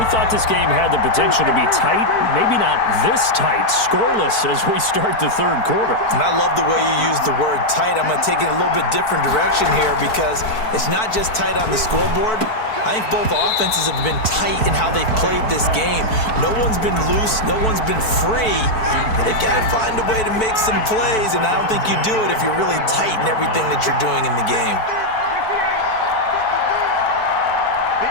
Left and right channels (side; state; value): right; late; 4.6 ms